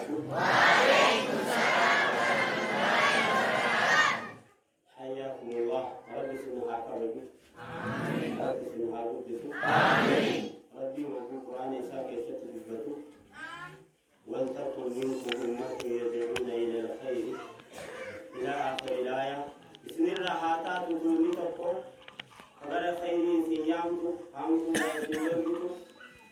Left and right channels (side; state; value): both; identical; correlation 1.00